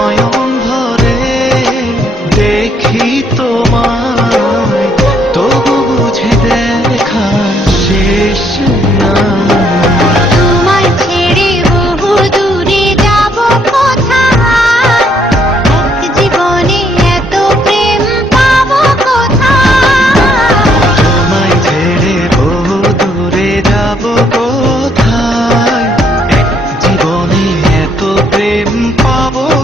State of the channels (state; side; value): normal; both; correlation 0.69